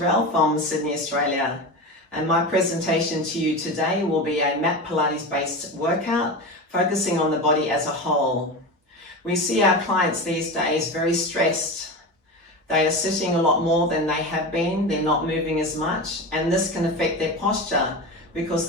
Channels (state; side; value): normal; both; correlation 0.24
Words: from Sydney, Australia, and my presentation to you today will be a mat Pilates based workout focusing on the body as a whole. We see our clients these days very stressed. They are sitting a lot more than they have been, they're not moving as much, and this can affect their posture because